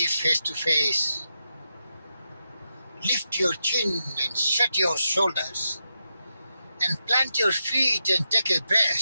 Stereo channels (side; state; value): both; inverted; correlation -0.87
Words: face to face. Lift your chin and shut your shoulders and plant your feet and take a